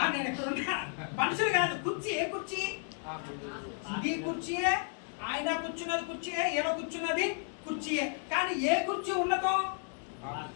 నేను ఎక్కడ ఉన్నా, మనుషులు కాదు, కుర్చీ. ఏ కుర్చీ? ఇది కుర్చీయే, ఆయన కూర్చున్నది కుర్చీయే, ఈయన కూర్చున్నది కుర్చీయే. కానీ ఏ కుర్చీ ఉన్నదో?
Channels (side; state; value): right; silent; 56 dB below the other